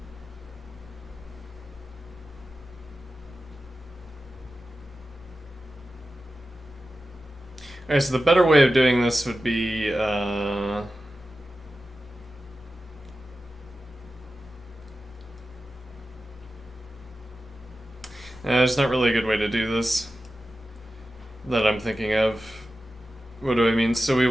alright, so the better way of doing this would be there's not really a good way to do this that I'm thinking of. What do I mean? So we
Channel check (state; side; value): normal; both; correlation 0.93